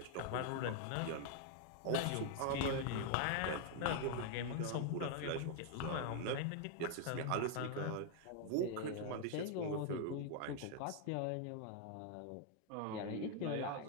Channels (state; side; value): different; both; correlation 0.00